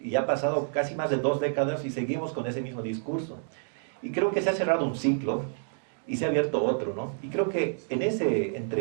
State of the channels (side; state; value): left; silent; digital silence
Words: y ya ha pasado casi más de 2 décadas y seguimos con ese mismo discurso. Y creo que se ha cerrado un ciclo y se ha abierto otro, ¿no? Y creo que en ese